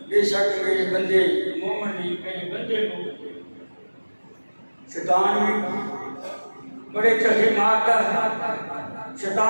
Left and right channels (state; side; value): inverted; both; correlation -1.00